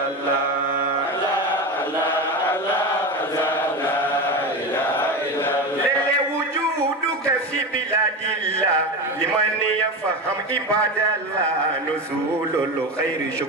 تفهم عباد الله نزول الخير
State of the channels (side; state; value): both; normal; correlation 0.22